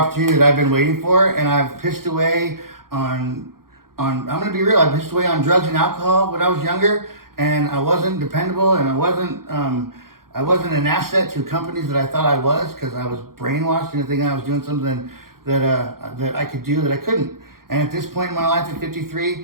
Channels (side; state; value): left; late; 0.93 ms